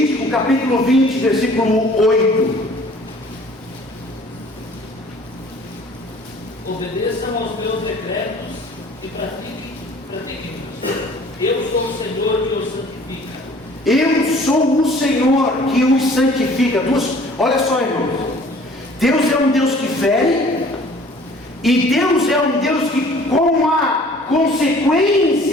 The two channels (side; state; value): both; normal; correlation 0.52